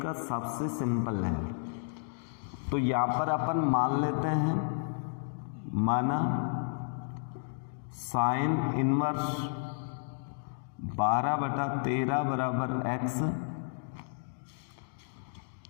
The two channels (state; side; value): silent; right; digital silence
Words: सबसे सिंपल है। तो यहाँ पर अपन मान लेते हैं, माना साइन इनवर्स 12/13 बराबर x